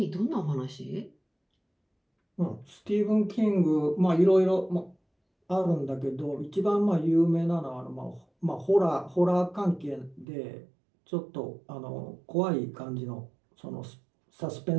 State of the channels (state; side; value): drops out; left; at 10.2 s